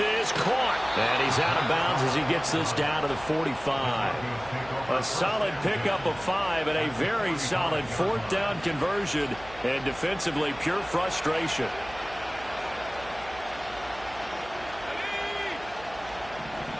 caught. And he's out of bounds as he gets this down to the 45. A solid pickup of 5 and a very solid 4th down conversion. And defensively, pure frustration.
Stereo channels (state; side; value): noise; right; hum, 19 dB below the sound